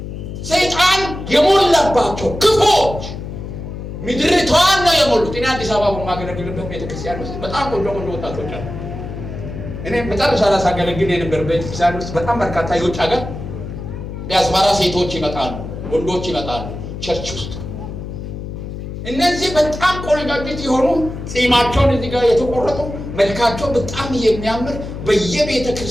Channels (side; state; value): left; noise; hum, 8 dB below the sound